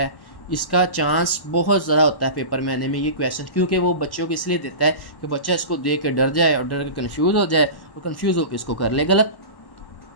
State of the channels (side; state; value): right; late; 1.1 ms